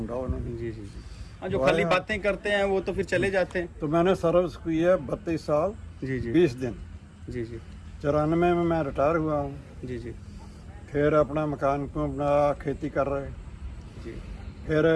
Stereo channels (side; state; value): both; identical; correlation 1.00